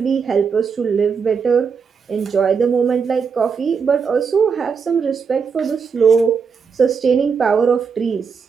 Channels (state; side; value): quieter; left; 5.9 dB